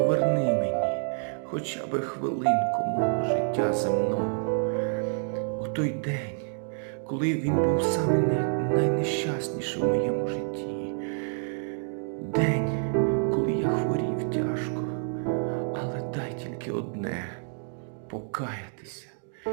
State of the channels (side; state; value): left; silent; 59 dB below the other